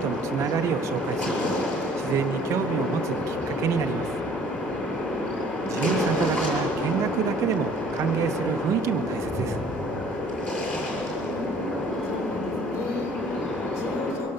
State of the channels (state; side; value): normal; both; correlation 0.55